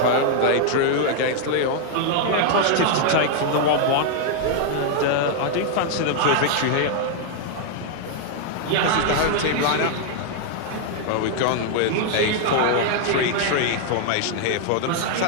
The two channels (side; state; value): both; different; correlation 0.00